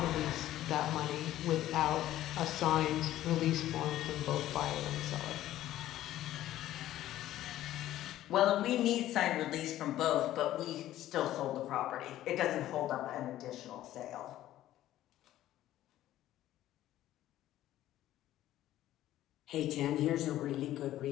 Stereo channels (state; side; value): quieter; right; 13.7 dB